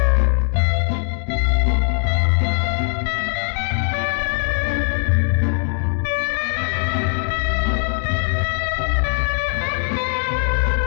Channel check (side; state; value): right; silent; digital silence